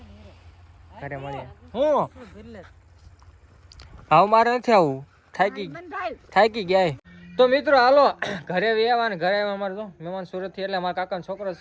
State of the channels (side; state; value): both; identical; correlation 1.00